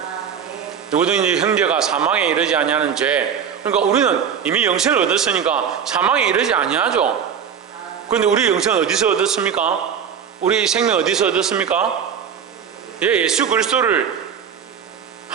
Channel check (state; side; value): quieter; left; 7.7 dB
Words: 누구든지 형제가 사망에 이르지 아니하는 죄. 그러니까 우리는 이미 영생을 얻었으니까 사망에 이르지 아니하죠. 그런데 우리 영생은 어디서 얻었습니까? 우리 생명 어디서 얻었습니까? 예수 그리스도를